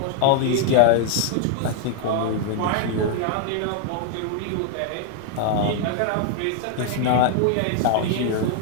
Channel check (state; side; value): different; both; correlation 0.00